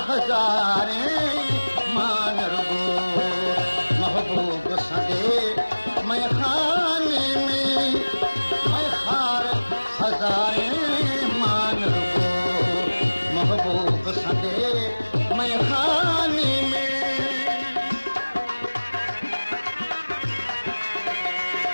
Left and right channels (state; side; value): inverted; both; correlation -1.00